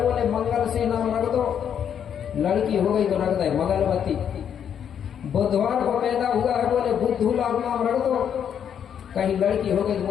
बोले मंगल से नाम रख दो, लड़की हो गई तो रख दे मंगलवती। बुधवार को पैदा हुआ है, बोले बुद्धू लाल नाम रख दो, कहीं लड़की हो गई तो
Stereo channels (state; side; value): quieter; right; 8.5 dB